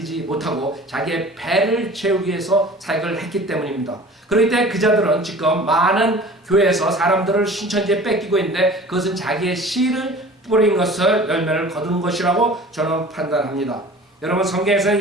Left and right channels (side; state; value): both; normal; correlation 0.43